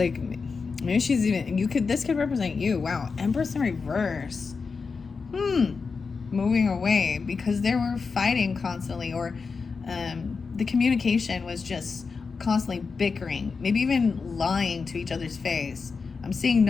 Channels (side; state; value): right; quieter; 4.9 dB